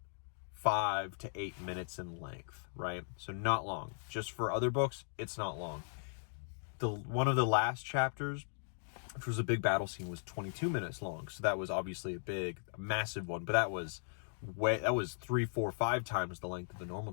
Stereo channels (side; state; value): right; silent; digital silence